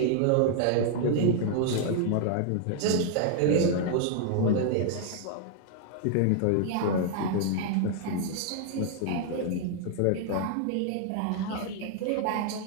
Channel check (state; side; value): different; both; correlation 0.00